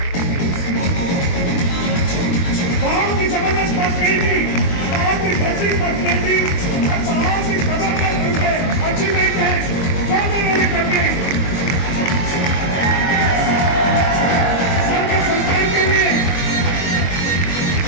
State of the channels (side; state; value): right; late; 22 ms